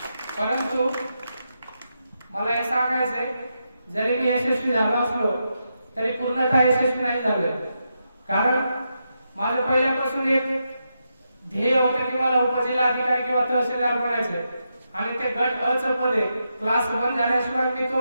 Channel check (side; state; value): both; inverted; correlation -0.85